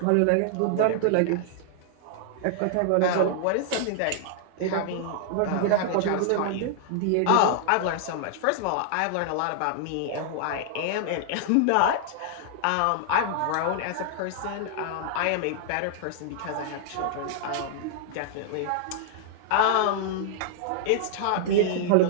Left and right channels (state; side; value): different; both; correlation -0.01